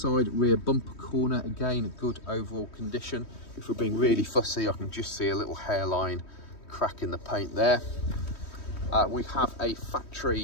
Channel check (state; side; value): late; right; 3.2 ms